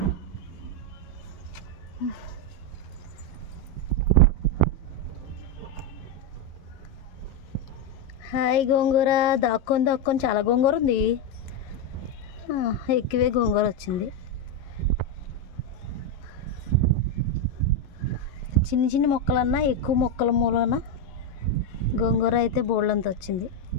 హాయ్ గోంగూర, దాక్కొని చాలా గోంగూర ఉంది. ఎక్కువే గోంగూర వచ్చింది. చిన్న మొక్కలన్నా ఎక్కువ మొక్కల మూలన గోంగూర అయితే బోల్డంత వచ్చింది.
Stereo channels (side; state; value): right; late; 11 ms